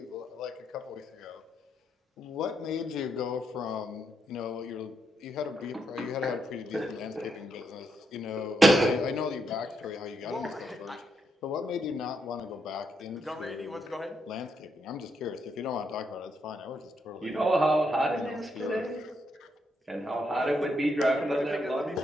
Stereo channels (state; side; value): normal; both; correlation 0.79